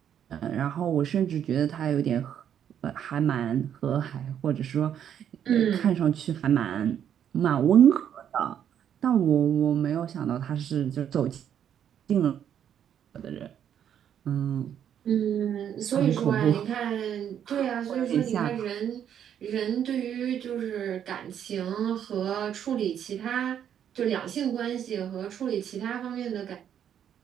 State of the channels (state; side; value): quieter; left; 9.3 dB